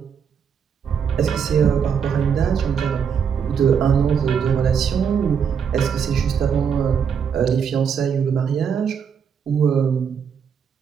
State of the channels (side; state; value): left; quieter; 7.1 dB